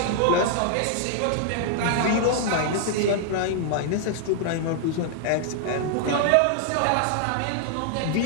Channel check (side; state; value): both; different; correlation -0.01